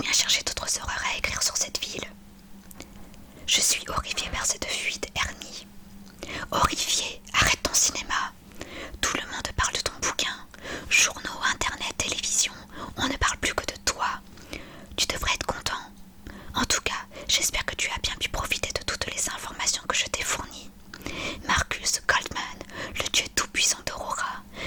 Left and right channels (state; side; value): identical; both; correlation 1.00